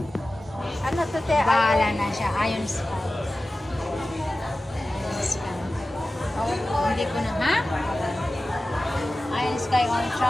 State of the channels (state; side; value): normal; both; correlation 0.95